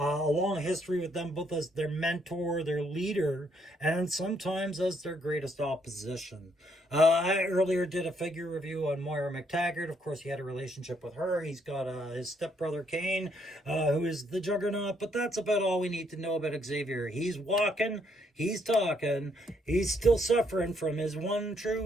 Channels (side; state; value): both; normal; correlation 0.71